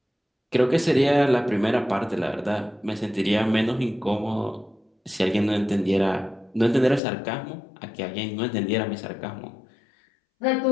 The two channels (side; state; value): right; drops out; at 7.0 s